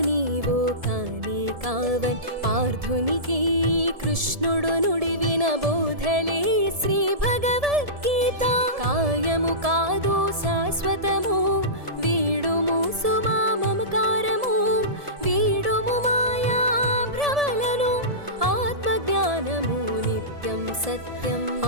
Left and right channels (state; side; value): late; left; 1.7 ms